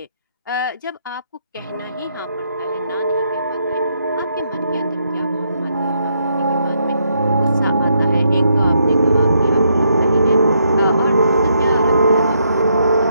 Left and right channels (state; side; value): inverted; both; correlation -0.76